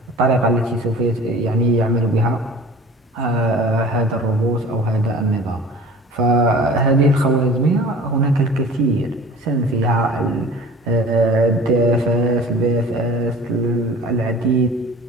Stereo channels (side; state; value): both; normal; correlation 0.42